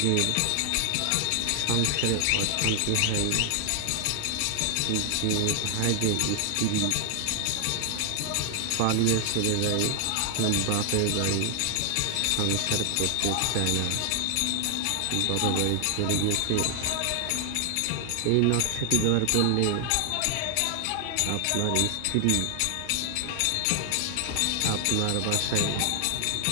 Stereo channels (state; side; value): different; both; correlation 0.00